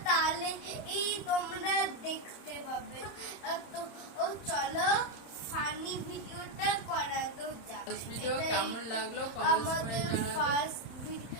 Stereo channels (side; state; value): right; late; 31 ms